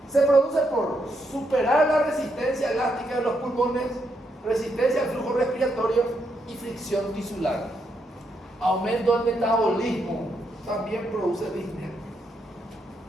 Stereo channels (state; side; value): normal; both; correlation 0.79